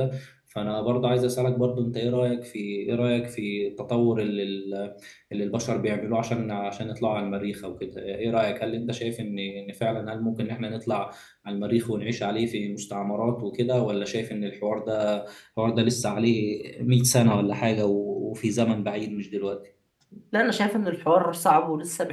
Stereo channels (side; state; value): both; identical; correlation 1.00